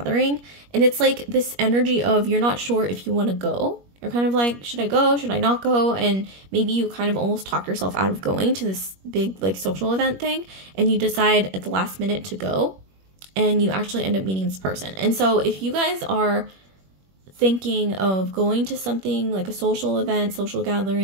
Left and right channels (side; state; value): left; late; 21 ms